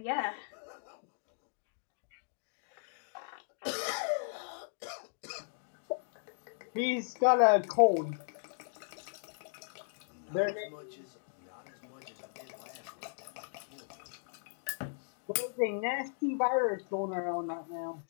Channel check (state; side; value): silent; right; digital silence